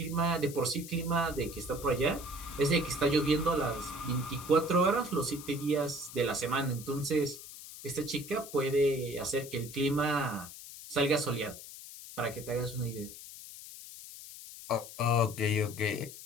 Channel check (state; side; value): noise; left; hiss, 14 dB below the sound